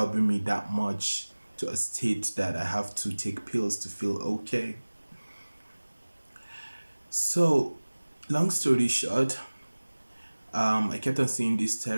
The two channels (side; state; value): both; inverted; correlation -1.00